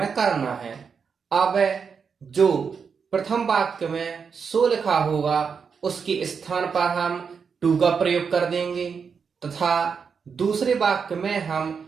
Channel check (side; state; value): left; quieter; 6.0 dB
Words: करना है। अब जो प्रथम वाक्य में सो लिखा होगा उसके स्थान पर हम टू का प्रयोग कर देंगे तथा दूसरे वाक्य में हम